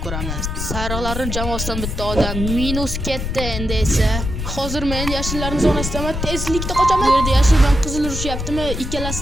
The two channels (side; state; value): left; noise; rumble, 4 dB below the sound